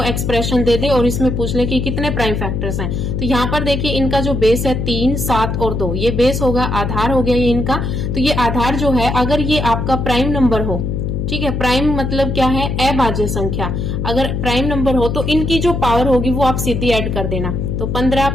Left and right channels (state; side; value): noise; left; hum, 2 dB below the sound